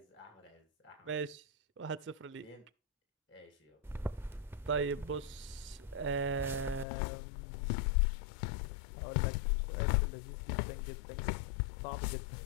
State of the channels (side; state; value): right; drops out; at 6.9 s